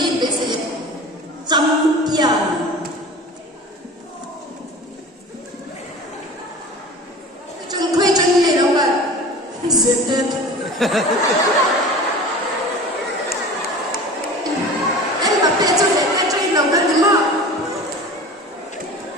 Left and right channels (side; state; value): both; normal; correlation 0.38